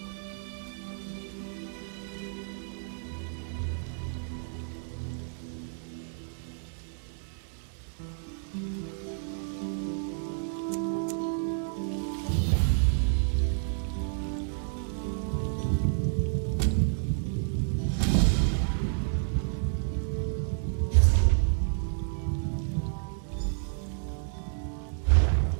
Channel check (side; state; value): left; silent; 58 dB below the other